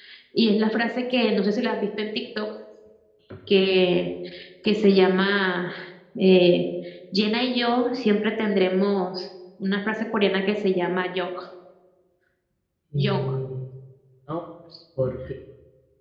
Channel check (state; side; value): identical; both; correlation 1.00